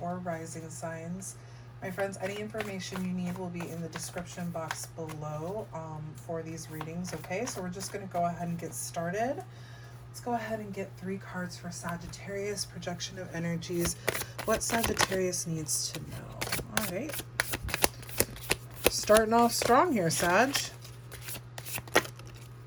Rising signs. My friends, any information you need will be in the description box below for these readings, okay? So we're just going to go ahead and get started. Let's go ahead and get 3 cards for Sagittarius, projection of energies, what Sagittarius needs to know. All right. Starting off strong here, Sag.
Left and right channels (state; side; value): identical; both; correlation 1.00